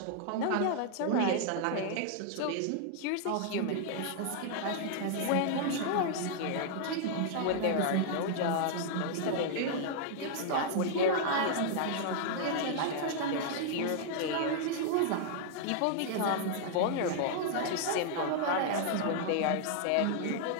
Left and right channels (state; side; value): different; both; correlation -0.01